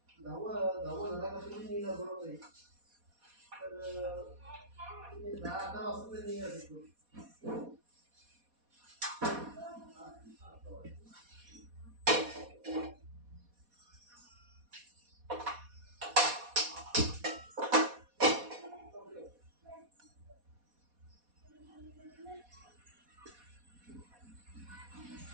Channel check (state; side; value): late; left; 4.2 ms